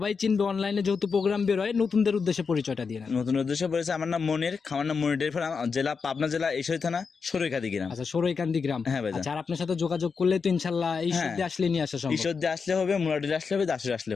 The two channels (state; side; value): quieter; right; 5.4 dB